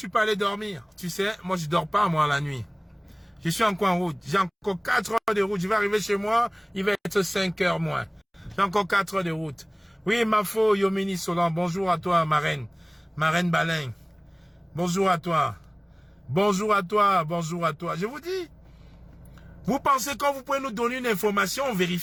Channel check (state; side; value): identical; both; correlation 1.00